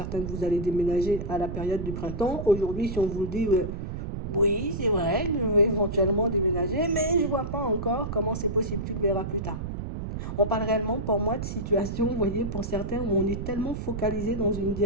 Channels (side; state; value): right; noise; rumble, 5 dB below the sound